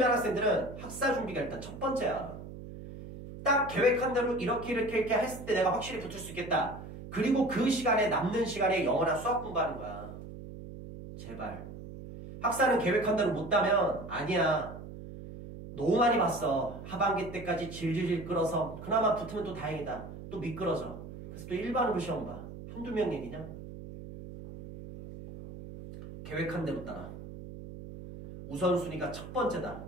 학생들은 학사 준비가 일단 첫 번째야. 딱 계획한 대로 이렇게 했을 때 내가 확실히 붙을 수 있겠다. 그리고 그 시간에 남는 시간에 영어나 수학 공부하는 거야. 제발. 학사는 계획한 대로 못 따면 아니야. 너무 많이 봤어. 하반기 때까지 질질질 끌어서 그나마 붙으면 또 다행이다. 또 미끄러져. 그래서 또 일반으로 시험 봐. 한두 명 얘기냐? 계획한 대로 따라. 우선순위가 첫 번째다.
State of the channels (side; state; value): right; noise; hum, 12 dB below the sound